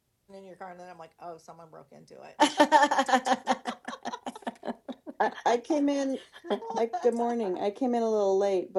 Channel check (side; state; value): both; identical; correlation 1.00